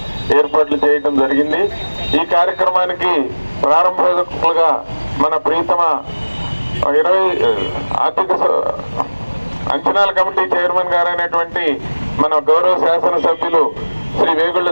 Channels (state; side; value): inverted; both; correlation -1.00